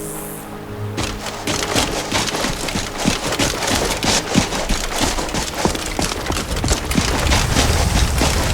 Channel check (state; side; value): identical; both; correlation 1.00